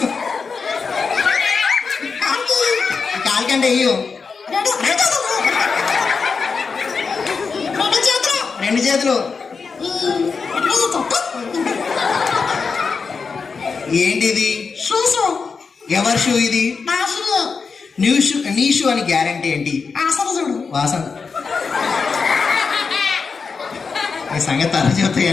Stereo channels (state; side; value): quieter; right; 5.1 dB